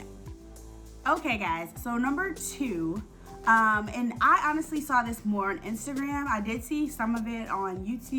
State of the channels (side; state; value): both; identical; correlation 1.00